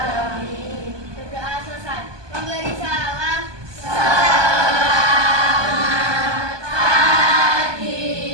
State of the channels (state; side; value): late; left; 1.2 ms